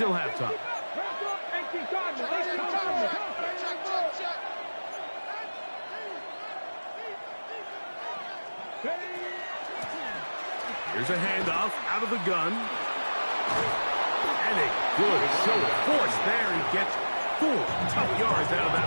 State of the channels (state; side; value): inverted; both; correlation -1.00